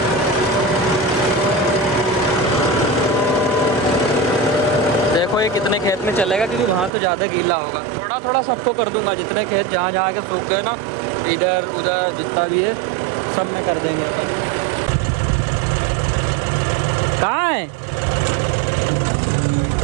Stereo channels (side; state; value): left; drops out; at 6.9 s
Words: देखो ये कितने खेत में चलेगा, क्योंकि वहाँ तो ज़्यादा गीला होगा। थोड़ा थोड़ा सबको कर दूंगा, जितने खेत जहाँ जहाँ के सूख गए ना, इधर उधर जितना भी है सब कर देंगे। कहाँ है